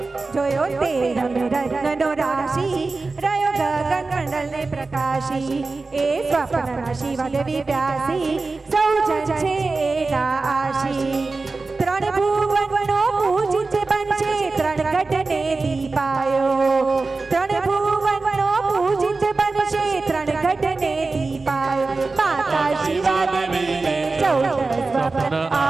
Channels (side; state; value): left; quieter; 3.8 dB